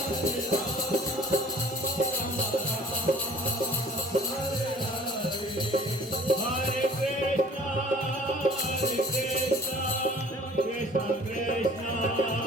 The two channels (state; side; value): normal; both; correlation 0.49